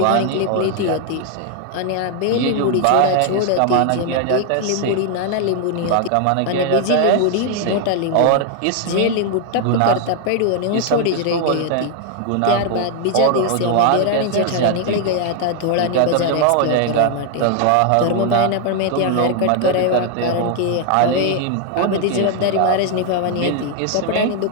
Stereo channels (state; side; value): different; both; correlation 0.00